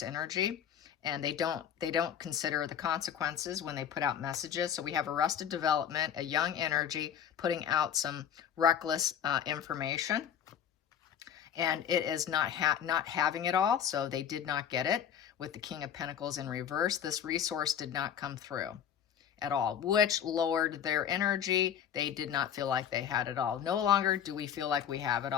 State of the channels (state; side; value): quieter; right; 9.0 dB